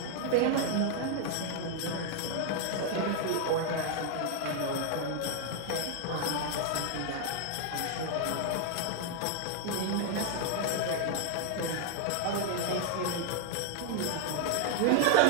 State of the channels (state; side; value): different; both; correlation 0.00